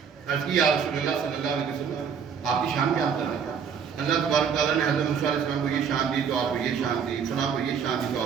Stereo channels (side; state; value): left; quieter; 7.0 dB